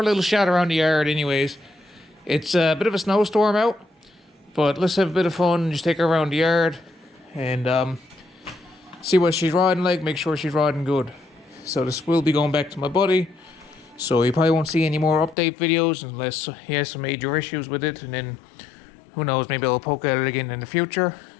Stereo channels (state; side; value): drops out; right; at 15.4 s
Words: a little shot around the yard anyways. It's a bit of a snowstorm out, but let's have a bit of fun and just take her around the yard and see what she's riding like, make sure she's riding good. So this will be going back to my buddy, so you probably won't see any more update videos unless he has some major issues with it, and then who knows, maybe I'll poke at it again in the future.